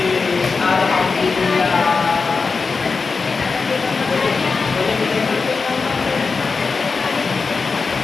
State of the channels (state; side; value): quieter; right; 4.6 dB